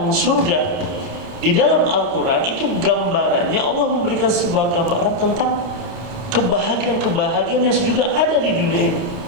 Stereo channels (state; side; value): late; left; 29 ms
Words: surga di dalam Al-Quran, itu gambarannya Allah memberikan sebuah gambaran tentang kebahagiaan-kebahagiaan yang juga ada di dunia ini.